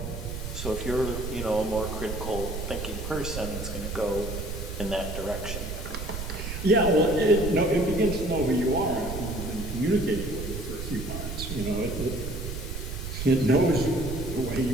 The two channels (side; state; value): right; noise; rumble, 6 dB below the sound